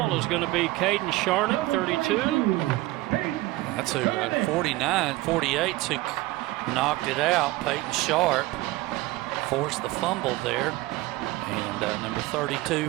is going to be Caden Sharnick, 32. That's who, 48's who knocked it out. Peyton Sharp forced the fumble there. And number 32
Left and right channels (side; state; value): left; quieter; 18.8 dB